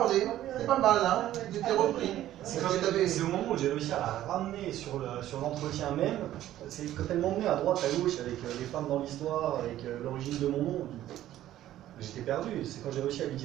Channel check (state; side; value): quieter; left; 13.2 dB